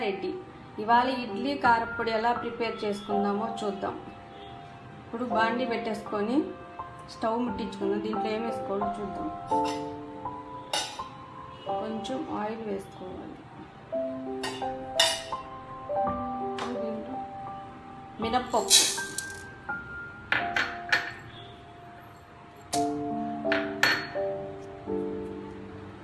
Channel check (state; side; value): identical; both; correlation 1.00